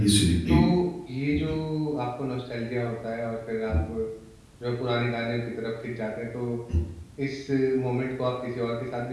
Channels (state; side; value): identical; both; correlation 1.00